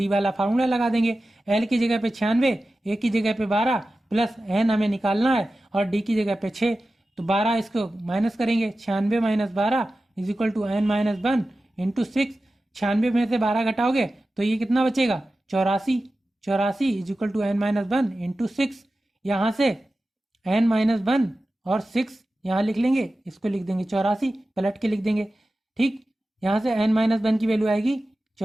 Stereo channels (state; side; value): normal; both; correlation 0.94